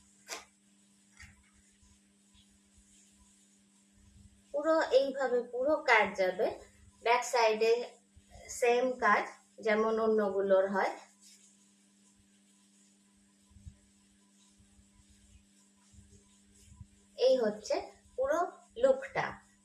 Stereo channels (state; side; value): identical; both; correlation 1.00